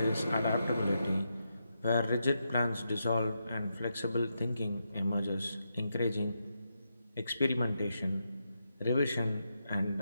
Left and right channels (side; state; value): both; inverted; correlation -0.84